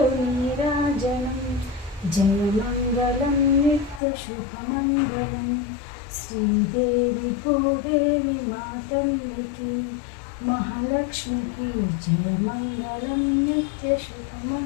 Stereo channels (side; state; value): right; drops out; at 4.0 s